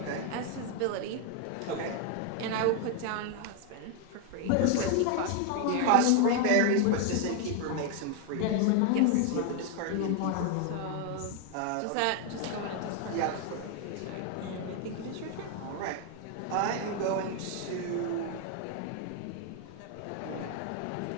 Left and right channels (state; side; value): different; both; correlation 0.00